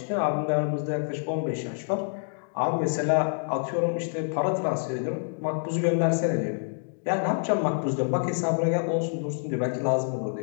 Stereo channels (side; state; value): right; silent; digital silence